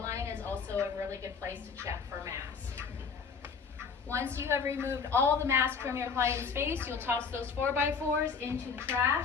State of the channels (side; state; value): right; quieter; 5.7 dB